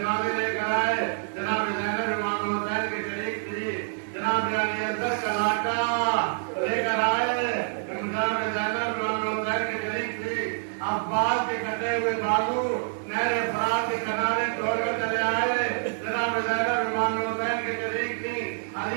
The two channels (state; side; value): silent; left; digital silence